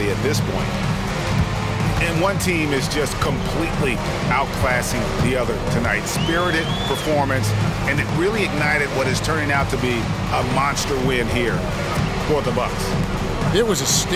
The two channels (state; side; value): identical; both; correlation 1.00